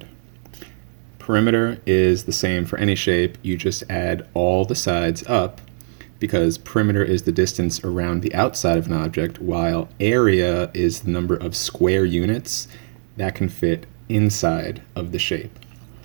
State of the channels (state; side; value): silent; left; digital silence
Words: Perimeter is the same for any shape. You just add all the sides up because perimeter is the distance around the outside of an object, while area is the number of square units that can fit inside of the shape,